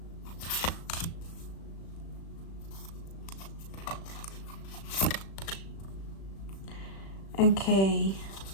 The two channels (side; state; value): right; late; 36 ms